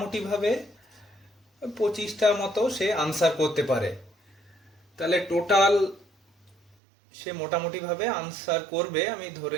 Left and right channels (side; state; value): left; drops out; at 6.8 s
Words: 25টা মতো সে আনসার করতে পারে। তাহলে টোটাল সে মোটামুটিভাবে আনসার করবে, আমি